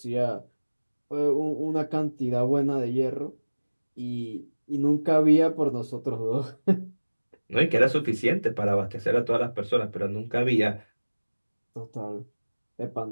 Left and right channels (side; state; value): both; inverted; correlation -1.00